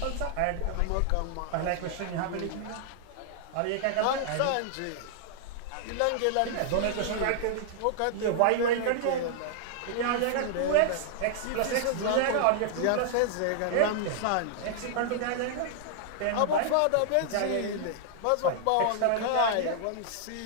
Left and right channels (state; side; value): different; both; correlation -0.01